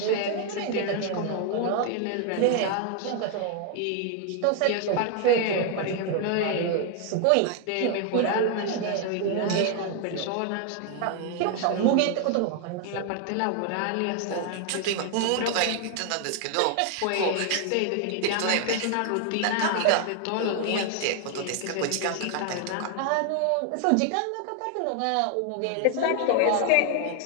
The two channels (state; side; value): different; both; correlation 0.00